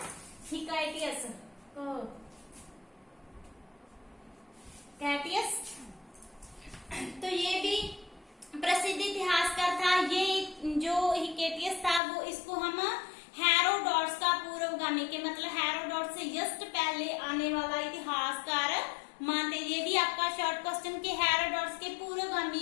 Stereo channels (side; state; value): right; drops out; at 12.0 s